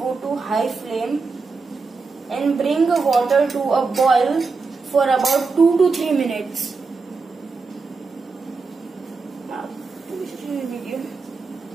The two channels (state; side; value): quieter; left; 4.4 dB